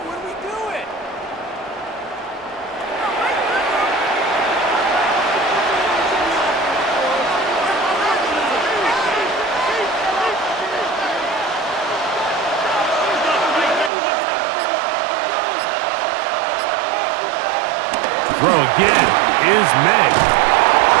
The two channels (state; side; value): drops out; left; at 13.9 s